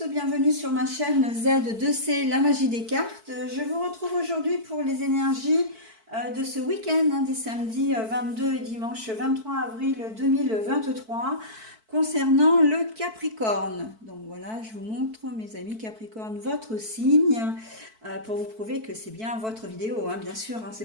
bienvenue sur ma chaîne Z2C, la magie des cartes. Je vous retrouve aujourd'hui pour les énergies de ce week-end, des samedis 22 et dimanche 23 avril 2023, concernant le Capricorne. Donc voilà, je vous montre, mes amis Capricorne, votre signe, pour vous prouver que c'est bien votre vidéo, bien sûr,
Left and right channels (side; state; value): left; late; 4.5 ms